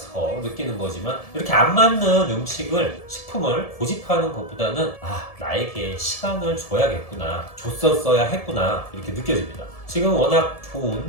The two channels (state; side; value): late; right; 1.7 ms